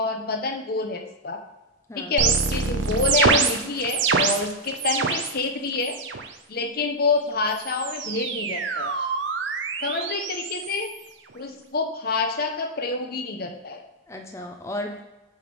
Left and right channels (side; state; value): both; normal; correlation -0.05